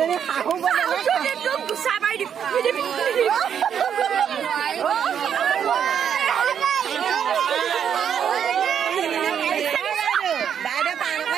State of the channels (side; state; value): left; quieter; 8.3 dB